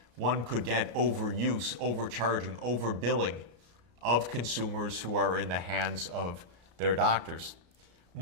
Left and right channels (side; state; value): left; late; 33 ms